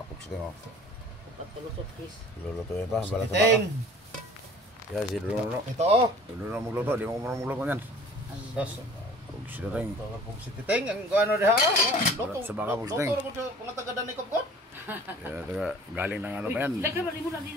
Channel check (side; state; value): both; normal; correlation 0.48